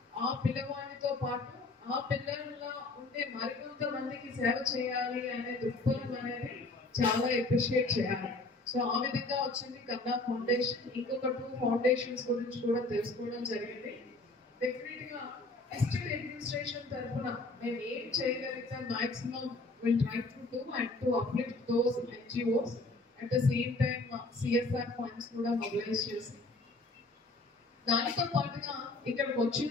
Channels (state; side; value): quieter; right; 3.1 dB